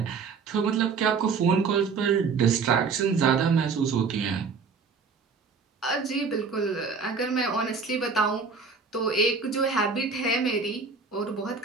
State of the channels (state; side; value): quieter; left; 5.1 dB